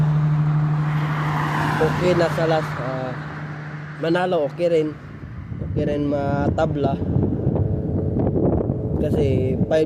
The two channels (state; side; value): identical; both; correlation 1.00